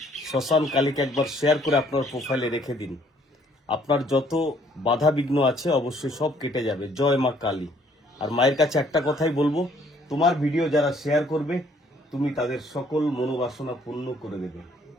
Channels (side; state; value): both; normal; correlation 0.63